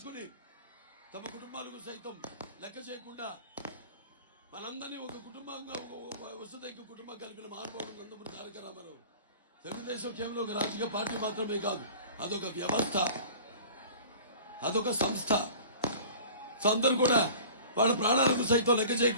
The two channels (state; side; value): inverted; both; correlation -0.43